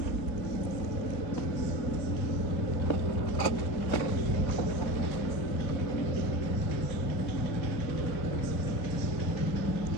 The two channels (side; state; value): right; late; 3.9 ms